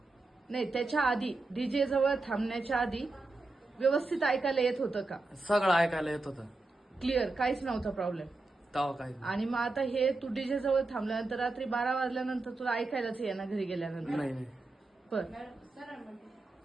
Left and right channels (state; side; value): quieter; left; 3.2 dB